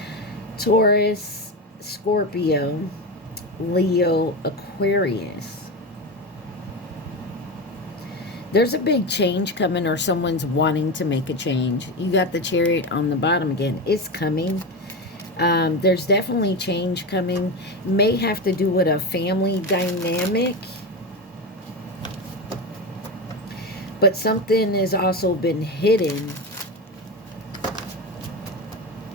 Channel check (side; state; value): both; normal; correlation 0.19